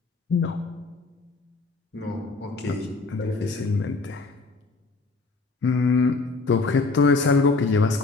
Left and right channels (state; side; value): quieter; right; 3.8 dB